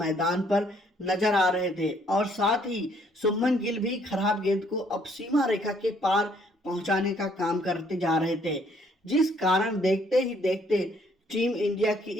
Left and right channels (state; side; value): normal; both; correlation 0.65